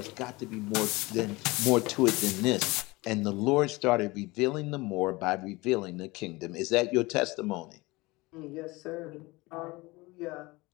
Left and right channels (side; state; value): right; quieter; 22.6 dB